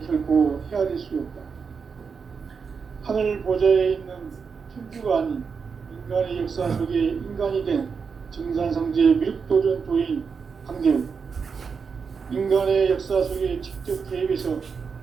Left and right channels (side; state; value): left; quieter; 5.7 dB